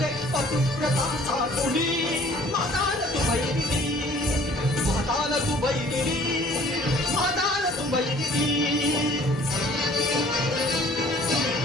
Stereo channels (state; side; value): normal; both; correlation 0.54